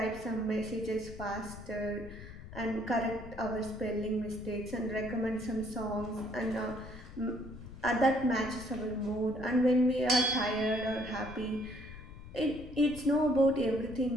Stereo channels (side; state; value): left; noise; rumble, 14 dB below the sound